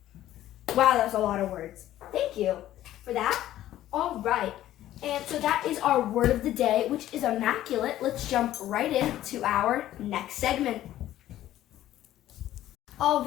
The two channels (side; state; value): right; quieter; 13.4 dB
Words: Wow, that was a lot of words. Thank you for that. All right, and so that is our word of the day, which is immaculate. Let's jump right into our next segment. All